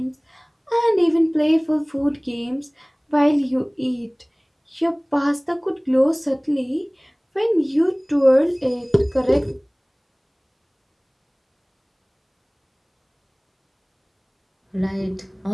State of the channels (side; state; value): both; identical; correlation 1.00